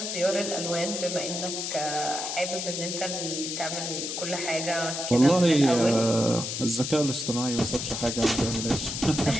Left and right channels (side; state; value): left; noise; hiss, 4 dB below the sound